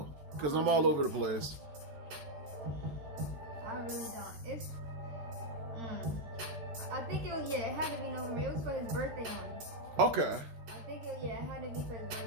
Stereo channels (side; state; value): left; late; 14 ms